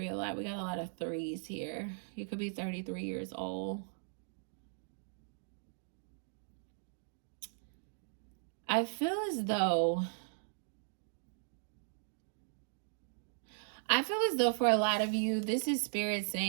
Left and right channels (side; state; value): left; silent; digital silence